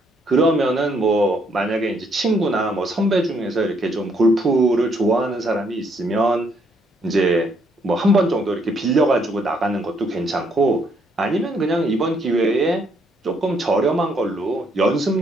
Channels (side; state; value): both; normal; correlation 0.70